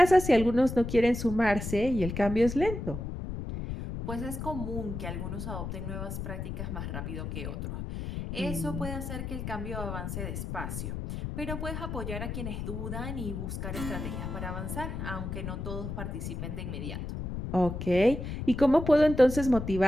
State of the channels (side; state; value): left; noise; rumble, 5 dB below the sound